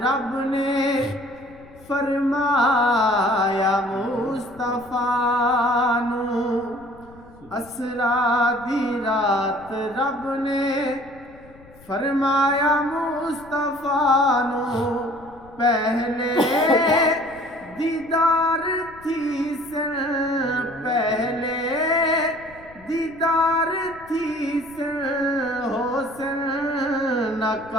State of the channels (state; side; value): noise; left; rumble, 24 dB below the sound